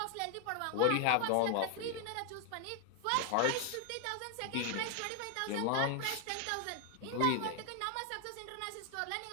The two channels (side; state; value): both; different; correlation 0.00